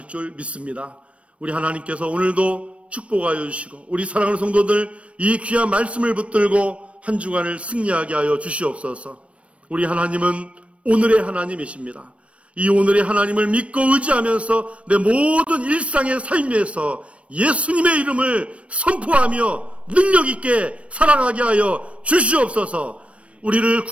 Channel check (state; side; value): late; left; 0.062 ms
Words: 줄 믿습니다. 우리 하나님께서 오늘도 축복하여 주시고, 우리 사랑하는 성도들 이 귀한 말씀을 붙들고 한 주간을 승리하게 하여 주시옵소서. 우리 하나님은 오늘의 하나님이십니다. 이 오늘의 하나님을 믿고 의지하면서 내 모든 일상의 삶에서 예수님의 이름을 선포하며 능력 있게 살아가게 하여 주시옵소서. 우리를